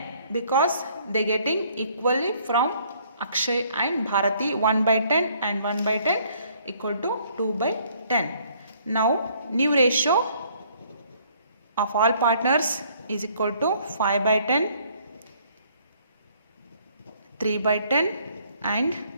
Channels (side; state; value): both; inverted; correlation -0.62